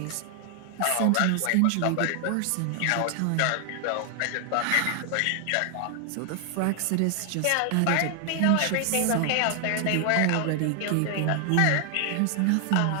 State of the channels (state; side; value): different; both; correlation 0.00